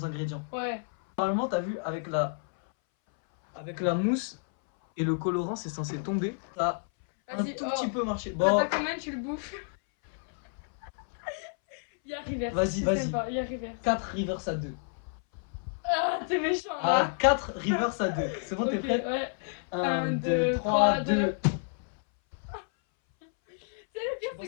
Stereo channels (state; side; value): silent; right; 58 dB below the other